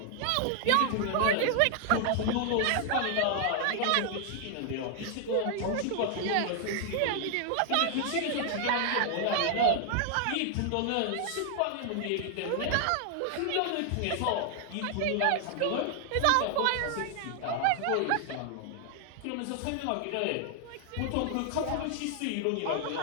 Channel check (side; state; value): both; different; correlation 0.00